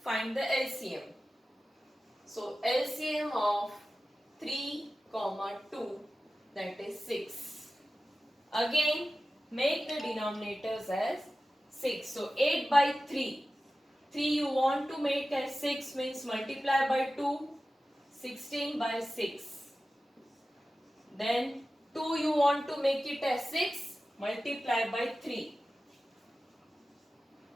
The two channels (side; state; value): both; normal; correlation 0.95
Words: find the LCM. So LCM of 3, 2, that is 6. Again, make the denominators as 6. So 8 by 3. 3 you want to make as 6 means multiply by 2. 16 by 6. Then 2 you want to make it as 6. Multiply by 3.